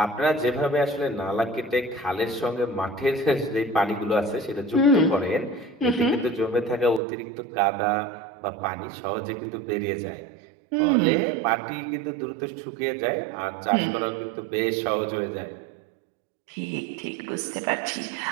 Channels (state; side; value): drops out; left; at 7.0 s